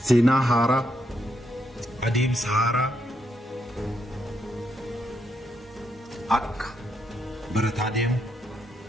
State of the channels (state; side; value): normal; both; correlation 0.79